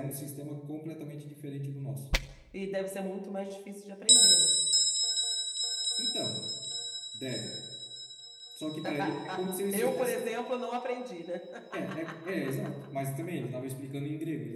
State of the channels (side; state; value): both; identical; correlation 1.00